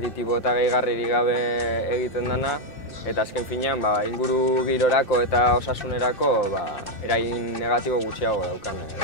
eta gehigarririk gabe egiten dena, eta azken finean inguru girorako eta osasunerako eragin negatibo gutxiago daukan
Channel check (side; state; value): right; late; 2.6 ms